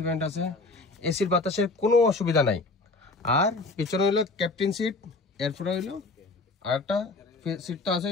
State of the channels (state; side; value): quieter; right; 3.4 dB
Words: ব্যান্ড আছে এসির বাতাসের কোনো অসুবিধা নাই আর পিছনে হইলো ক্যাপ্টেন সিট এরপরে হইলো আর একটা সিট তো আছে